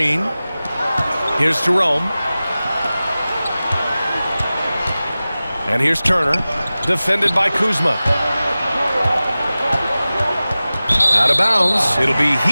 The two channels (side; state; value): both; inverted; correlation -0.97